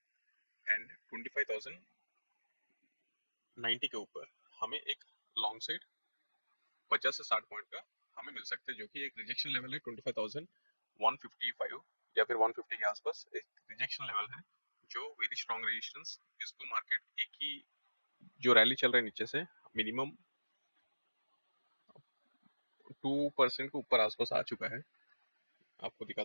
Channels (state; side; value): inverted; both; correlation -1.00